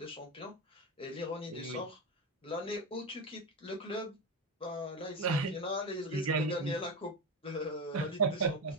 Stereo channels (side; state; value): both; normal; correlation 0.16